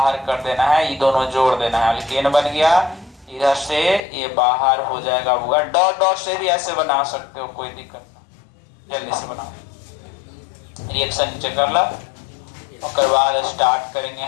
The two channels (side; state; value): right; drops out; at 4.0 s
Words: कर देना है, ये दोनों जोड़ देना है, अल्केन बन गया। इधर से ये बाहर हो जाएगा होगा। डॉट डॉट से भी ऐसे बना सकते हो, कोई दिक्कत ना, जल्दी से बनाओ। रिएक्शन नीचे कर ला, उसके बाद स्टार्ट करेंगे